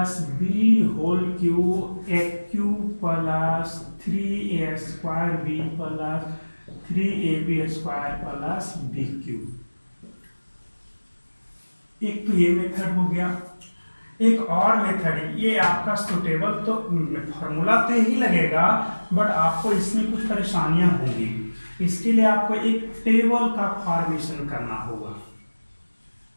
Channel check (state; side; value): inverted; both; correlation -1.00